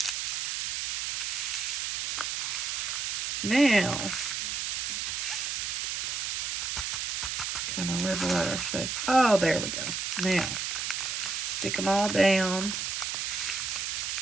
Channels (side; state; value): right; noise; hiss, 1 dB below the sound